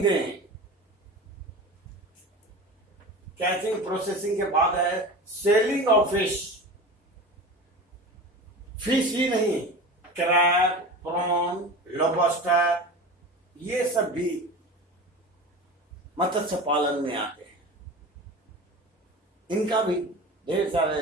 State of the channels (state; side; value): normal; both; correlation 0.32